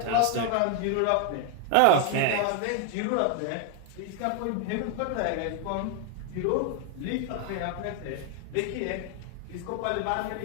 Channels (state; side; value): different; both; correlation 0.01